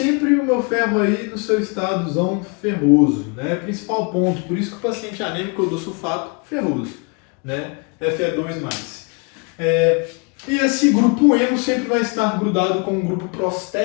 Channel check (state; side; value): quieter; right; 32.8 dB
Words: o meu ferro aí no seu estadozão ferroso, né, principal ponto, por isso que o paciente anêmico eu dou sulfato ferroso, né, Fe2+. E esse grupo hemo sempre vai estar grudado com um grupo